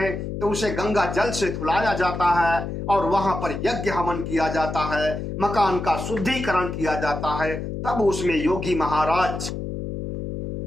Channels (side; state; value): left; noise; hum, 5 dB below the sound